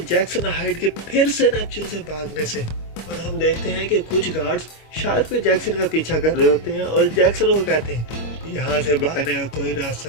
जैक्सन हाइड के फिर से नेपच्यून से भागने से। और हम देखते हैं कि कुछ गार्ड्स शार्क पे जैक्सन का पीछा कर रहे होते हैं और जैक्सन को कहते हैं यहाँ से भागने का कोई रास्ता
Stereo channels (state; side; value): late; right; 25 ms